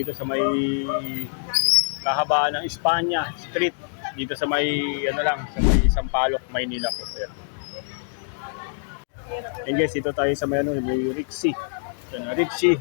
sa may kahabaan ng Espanya Street dito sa may ano lang sa may Sampaloc, Maynila po. Ayan. And guys, dito tayo sa may ano, may Rixie. So, Rixie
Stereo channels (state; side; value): silent; right; digital silence